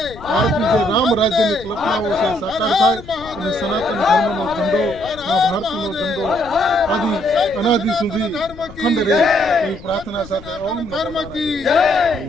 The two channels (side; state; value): left; noise; rumble, 17 dB below the sound